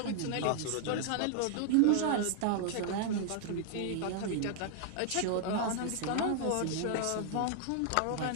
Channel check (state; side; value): different; both; correlation -0.01